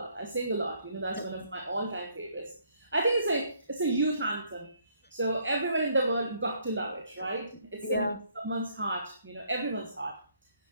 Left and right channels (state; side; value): inverted; both; correlation -0.67